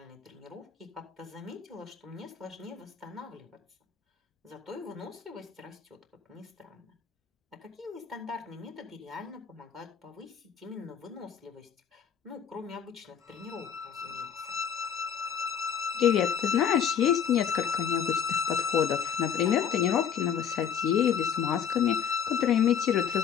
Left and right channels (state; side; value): quieter; right; 7.9 dB